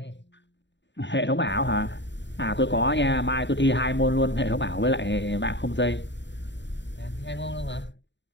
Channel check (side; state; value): right; late; 0.52 ms